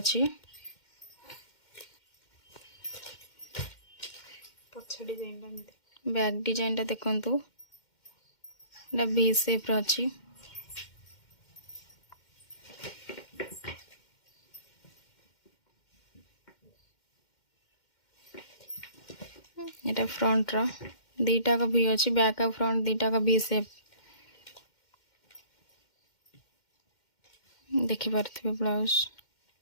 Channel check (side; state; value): right; late; 2.1 ms